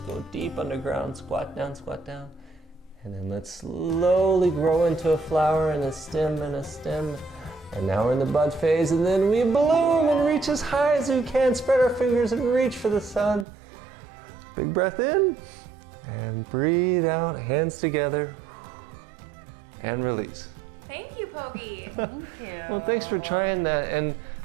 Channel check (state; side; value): drops out; left; at 13.5 s